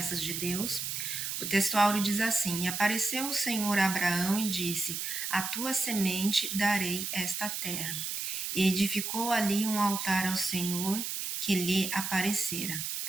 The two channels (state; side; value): noise; right; hiss, 3 dB below the sound